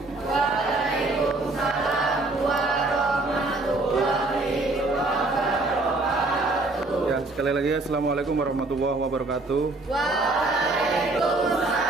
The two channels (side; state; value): left; quieter; 3.1 dB